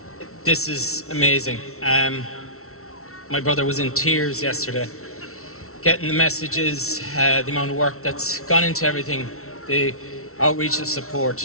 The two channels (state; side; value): late; right; 0.63 ms